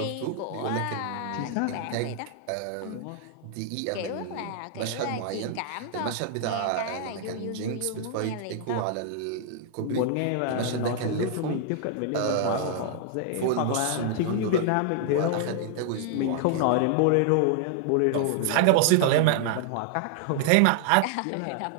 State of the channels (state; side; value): different; both; correlation -0.01